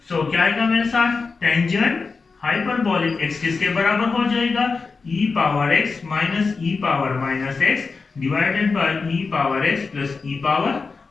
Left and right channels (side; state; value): right; quieter; 4.5 dB